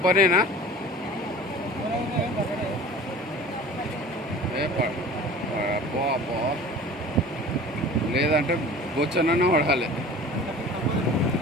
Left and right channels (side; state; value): both; normal; correlation 0.41